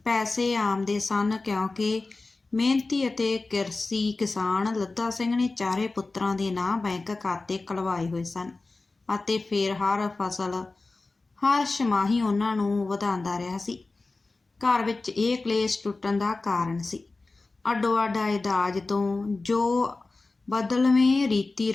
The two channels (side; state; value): right; quieter; 3.5 dB